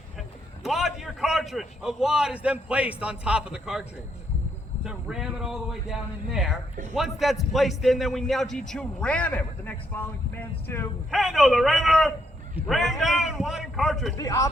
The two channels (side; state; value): both; normal; correlation 0.75